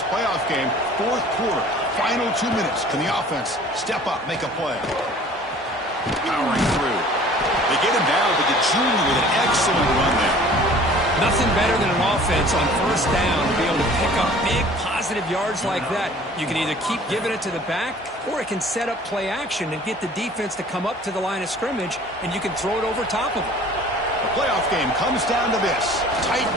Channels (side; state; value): both; normal; correlation 0.49